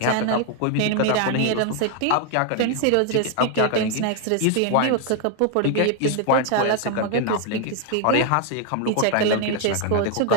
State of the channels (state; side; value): different; both; correlation 0.01